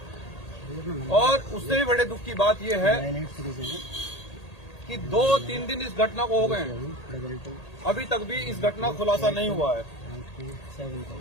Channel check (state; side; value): late; right; 1.8 ms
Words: और उससे भी बड़े दुख की बात यह है कि 2-3 दिन इस घटना को हो गए हैं, अभी तक भी इस घटना का खुलासा नहीं हुआ है।